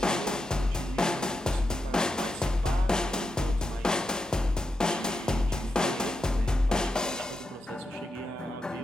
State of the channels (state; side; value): normal; both; correlation 0.86